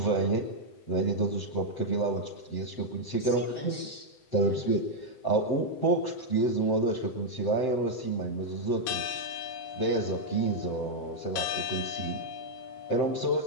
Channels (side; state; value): right; late; 7.8 ms